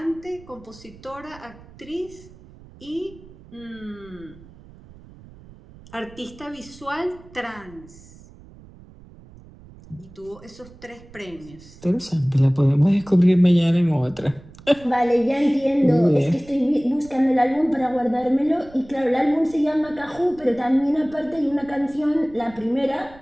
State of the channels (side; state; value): right; noise; rumble, 21 dB below the sound